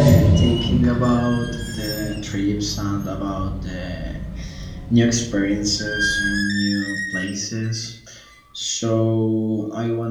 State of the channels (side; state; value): both; identical; correlation 1.00